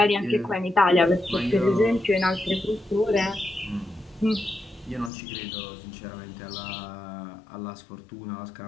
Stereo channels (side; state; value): right; drops out; at 5.1 s